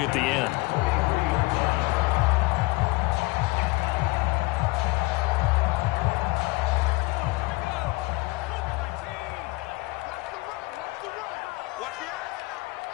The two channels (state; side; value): quieter; right; 23.1 dB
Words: at the end.